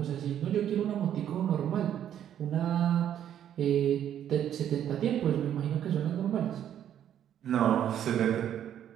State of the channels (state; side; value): quieter; left; 10.2 dB